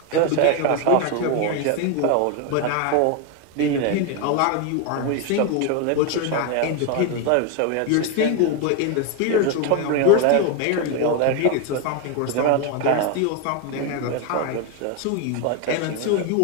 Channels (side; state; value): both; different; correlation 0.01